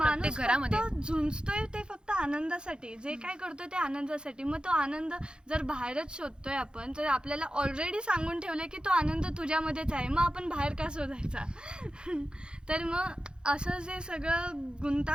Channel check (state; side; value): late; left; 0.049 ms